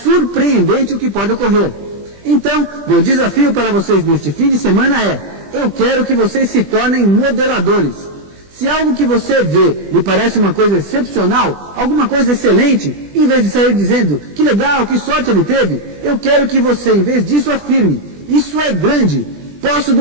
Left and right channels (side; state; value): left; late; 20 ms